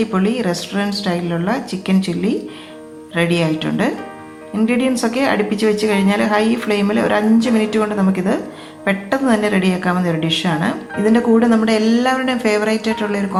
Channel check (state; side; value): identical; both; correlation 1.00